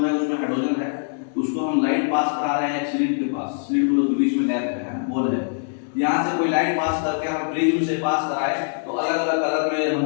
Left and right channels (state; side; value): silent; right; digital silence